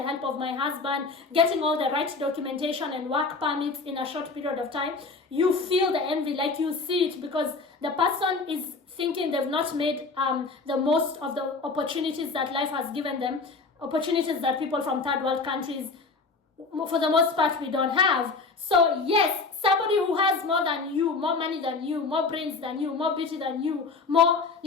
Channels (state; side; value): quieter; right; 4.2 dB